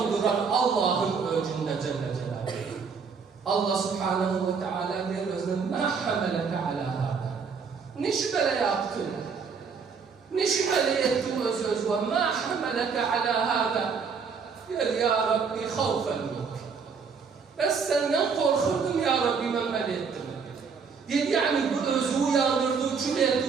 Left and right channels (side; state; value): left; quieter; 5.7 dB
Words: duran Allah'ın öcünde Celle Celaluhu. Allah Subhanahu ve Teala der özüne ma hameleke ala hâdâ. Ne şüphele yaptın? Ne şüphele ettin öz ve ma hameleke ala hâdâ. Der ya Rabbi havfen yok. Ben senden korkurdum ya Rabbi memel ettim. Der yani bu özü yandırdı, kül